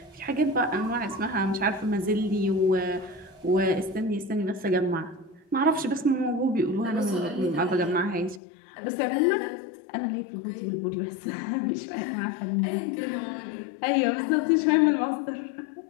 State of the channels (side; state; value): right; drops out; at 8.4 s